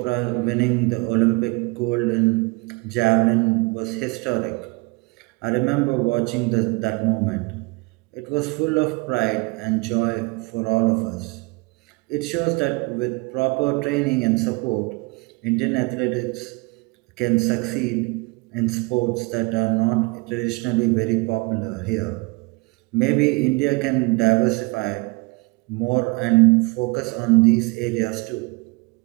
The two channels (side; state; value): left; quieter; 27.3 dB